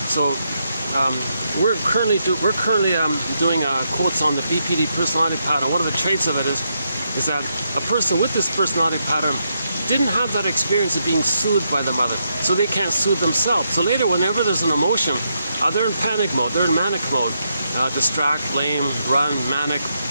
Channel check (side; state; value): both; inverted; correlation -0.81